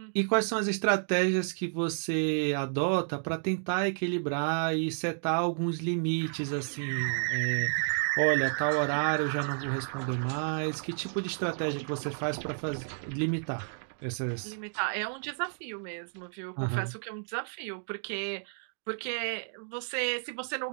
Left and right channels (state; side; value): silent; left; digital silence